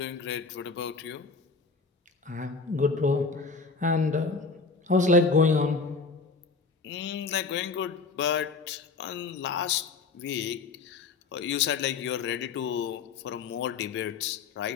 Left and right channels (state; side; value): quieter; right; 4.3 dB